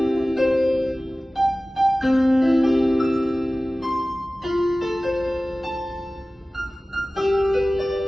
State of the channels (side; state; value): both; normal; correlation 0.97